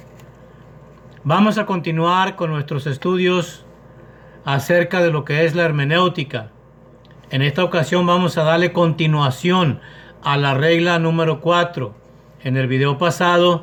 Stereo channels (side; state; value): both; identical; correlation 1.00